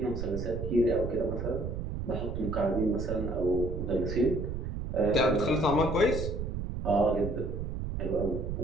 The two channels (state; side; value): noise; right; rumble, 4 dB below the sound